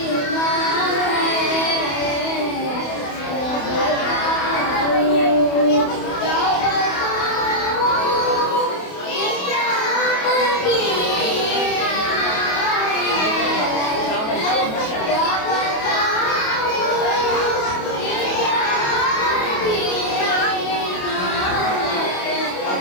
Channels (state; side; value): late; right; 28 ms